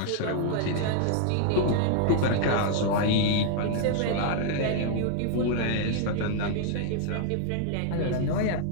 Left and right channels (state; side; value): different; both; correlation 0.00